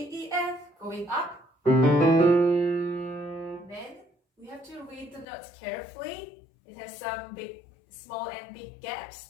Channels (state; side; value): drops out; right; at 5.2 s